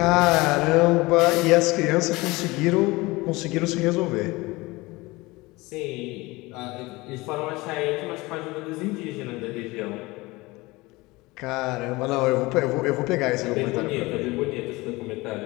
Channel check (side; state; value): right; quieter; 22.0 dB